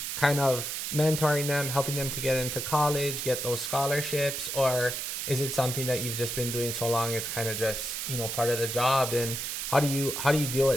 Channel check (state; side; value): noise; right; hiss, 4 dB below the sound